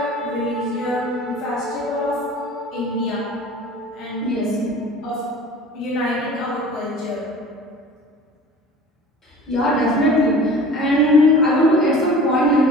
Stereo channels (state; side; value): normal; both; correlation 0.42